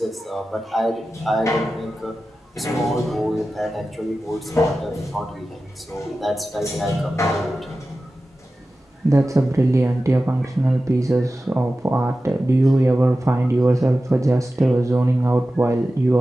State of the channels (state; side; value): normal; both; correlation 0.94